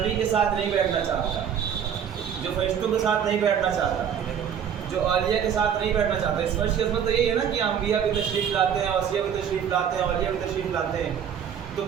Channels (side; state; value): left; quieter; 8.3 dB